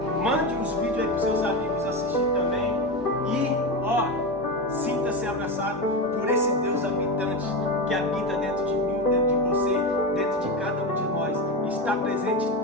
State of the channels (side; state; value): both; normal; correlation 0.17